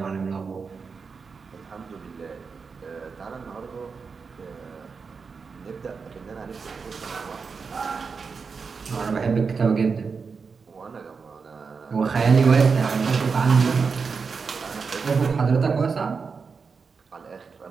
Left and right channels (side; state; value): left; quieter; 5.2 dB